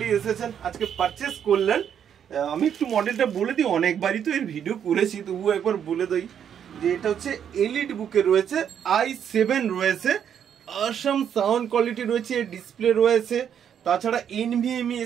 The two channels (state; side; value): quieter; left; 8.7 dB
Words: এসেছেন, আজকে পারচেস করলেন। আমি একটু মডেলটা বলে দিই, অনেকবারই তো এর ভিডিও করেছি, তবুও একবার বলে দিই যে এটা হচ্ছে এলিট বুকে রয়েছে, i7 রয়েছে, আসাম সাউন্ড কোয়ালিটি রয়েছে, ডিসপ্লে রয়েছে, তাছাড়া NVMe